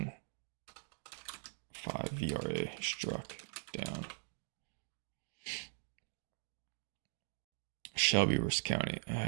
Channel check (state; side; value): silent; left; digital silence